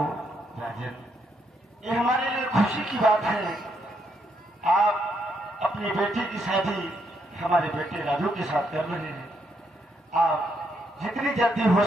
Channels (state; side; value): normal; both; correlation 0.76